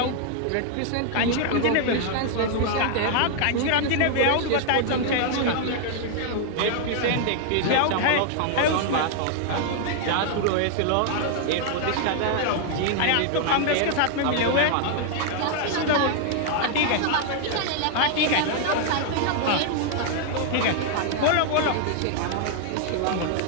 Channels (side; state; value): both; different; correlation 0.00